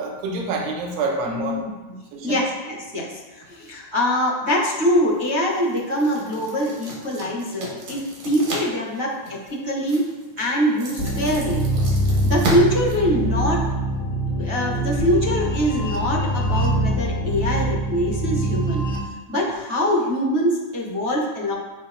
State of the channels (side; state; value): left; late; 9.2 ms